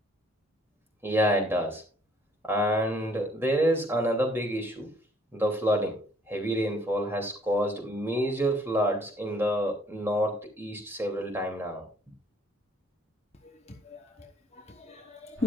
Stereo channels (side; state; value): both; normal; correlation 0.61